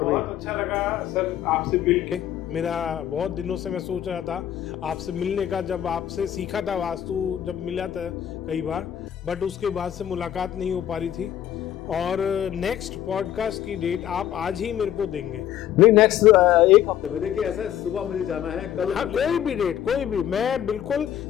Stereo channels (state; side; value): quieter; right; 11.1 dB